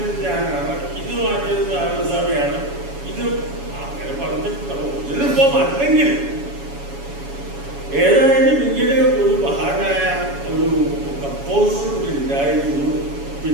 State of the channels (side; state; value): left; late; 7.2 ms